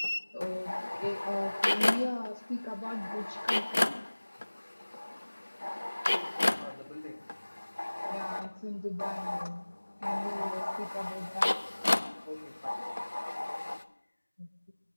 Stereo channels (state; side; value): inverted; both; correlation -1.00